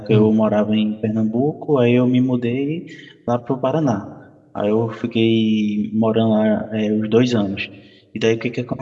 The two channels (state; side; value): identical; both; correlation 1.00